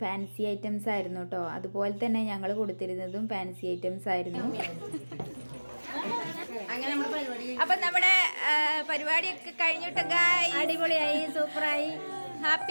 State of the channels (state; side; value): inverted; both; correlation -1.00